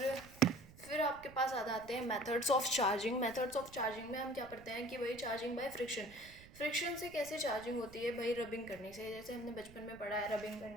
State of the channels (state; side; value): noise; right; rumble, 20 dB below the sound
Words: फिर आपके पास आ जाते हैं methods of charging. Methods of charging में हम क्या पढ़ते हैं कि भाई चार्जिंग बाय फ्रिक्शन। फ्रिक्शन से कैसे चार्जिंग होती है भाई, रबिंग करने से। जैसे हमने बचपन में पढ़ा है, रबिंग